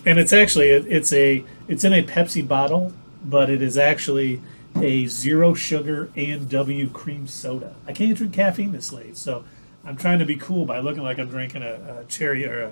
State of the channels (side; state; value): both; inverted; correlation -1.00